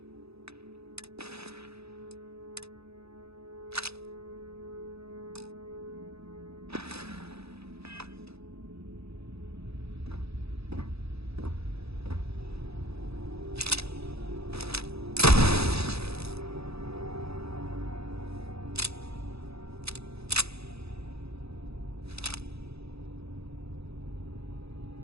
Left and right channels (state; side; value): late; left; 0.78 ms